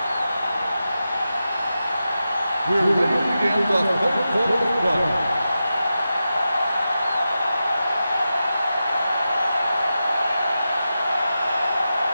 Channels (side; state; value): both; inverted; correlation -0.91